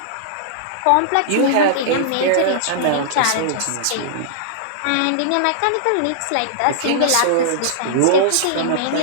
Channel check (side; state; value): both; different; correlation -0.02